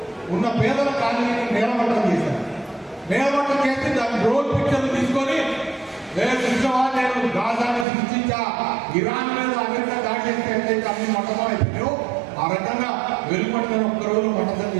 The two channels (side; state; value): left; drops out; at 7.9 s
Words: ఉన్న పేదల కాలనీని నేలమట్టం చేశారు. నేలమట్టం చేసి దాని డ్రోన్ పిక్చర్లు తీసుకొని నేను గాజాను సృష్టించా, ఇరాన్ మీద అమెరికా దాడి చేస్తే ఎట్లయితే అన్ని మట్టం అయిపోయాయో ఆ రకంగా వెలుపడిన ఒక్కరోజు మట్టం